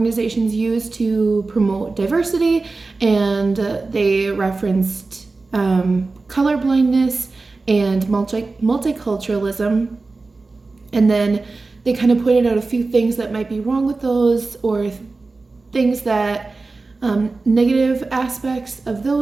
use to promote diversity, and they referenced colorblindness and multiculturalism, and then they kind of pointed out a few things that might be wrong with those, or things that negative aspects of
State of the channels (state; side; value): quieter; left; 3.7 dB